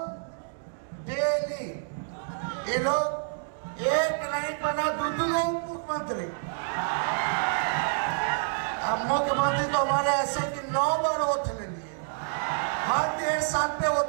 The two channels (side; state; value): left; silent; digital silence